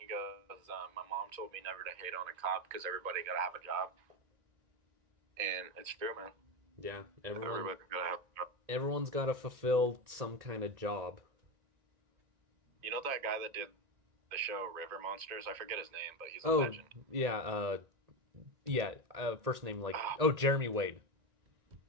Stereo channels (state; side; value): late; left; 1.9 ms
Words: goes, "My mom told me never to hate on a cop because everybody got to have a job," and it's true, man. yeah, Everybody got to have a job. everyone's got to fulfill some kind of job. You know that guy that did the show River Monsters? I forget his name, but he's a Oh, legend. yeah, first name like Oh, Jeremy Wade.